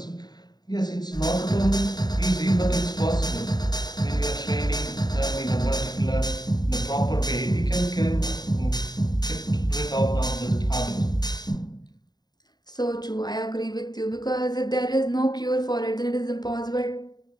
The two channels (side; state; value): right; late; 0.20 ms